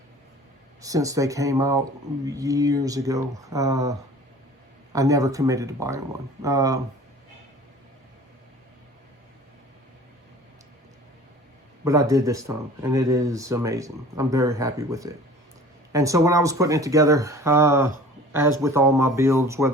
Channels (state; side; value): normal; both; correlation 0.45